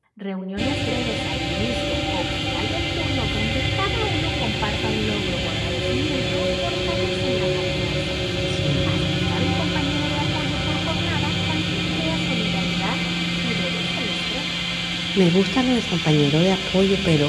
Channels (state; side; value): identical; both; correlation 1.00